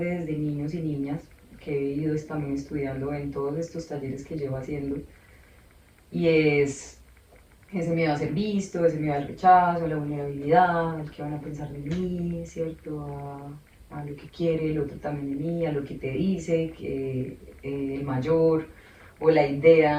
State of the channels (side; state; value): both; identical; correlation 1.00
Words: desde niños y niñas, que he ido también estudiando en todos estos talleres que llevo haciendo, y es ese miedo a ser visto, ese miedo al rechazo, a la vulnerabilidad, al que van a pensar de mí, ¿cierto? A lo que quiere el otro también de mí, a lo que te dice, que el mayor, o la